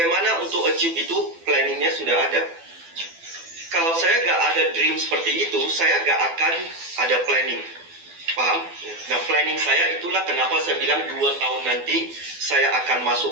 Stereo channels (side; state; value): left; late; 12 ms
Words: untuk achieve itu, planningnya sudah ada. Kalau saya gak ada dream seperti itu, saya gak akan ada planning. Paham? Nah, planning saya itulah kenapa saya bilang 2 tahun nanti saya akan